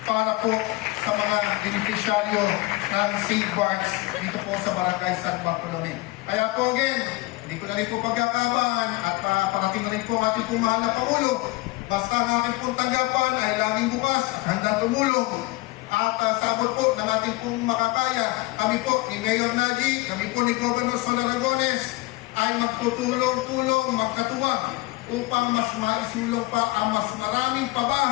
para po sa mga beneficiaryo ng City Parks dito po sa Barangay San Bartolome. Kaya po again, hindi ko na rin po pagkakabahan at parating na rin po ang ating pong mahal na Pangulo. Basta ang ating pong tanggapan ay laging bukas, handang tumulong. At sabot po ng ating pong makakaya, kami po ni Mayor Najib, kami po ni Governor Sol Aragones ay magtutulong-tulong, magkatuwang upang mas maisulong pa ang mas maraming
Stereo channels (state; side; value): quieter; right; 21.8 dB